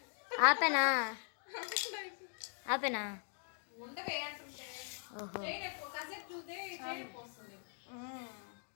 ఆపేనా? ఆపేనా? ఉండవే అంటుంటే ఓహో,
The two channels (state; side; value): silent; right; 51 dB below the other